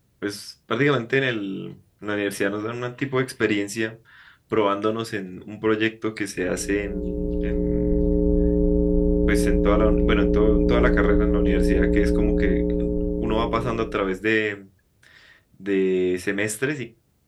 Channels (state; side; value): identical; both; correlation 1.00